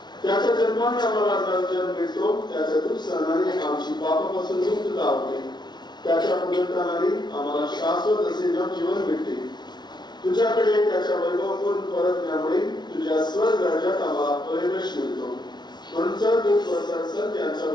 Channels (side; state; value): right; late; 0.20 ms